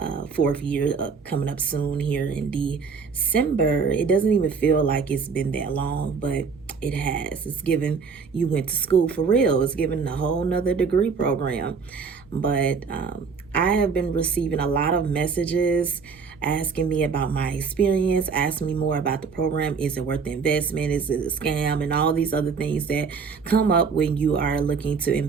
fourth year coming up soon here in December. It doesn't even feel like it's been that long, but it has. It's given you went to school for real. It's given a whole nother degree program. But I have been receiving a lot of messages asking me about my experience, asking me more about the program. Is it worth the investment? Is it a scam? And all these other things that come up when you are looking to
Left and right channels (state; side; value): quieter; left; 5.4 dB